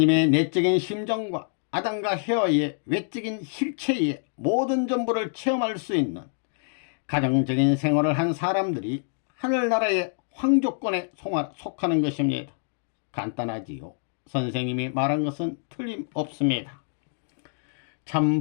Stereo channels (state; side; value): silent; right; digital silence